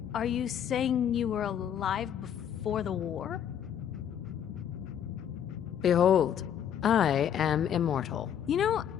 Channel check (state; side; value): quieter; right; 9.2 dB